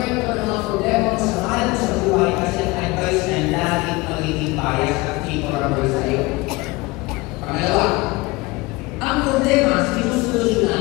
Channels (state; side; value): quieter; right; 22.8 dB